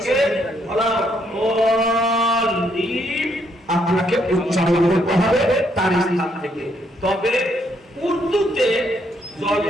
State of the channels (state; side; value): normal; both; correlation 0.73